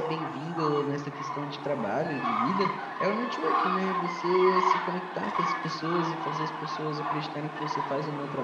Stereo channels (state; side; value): identical; both; correlation 1.00